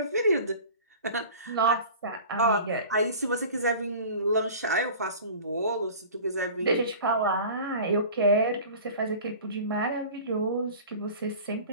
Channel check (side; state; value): both; inverted; correlation -0.40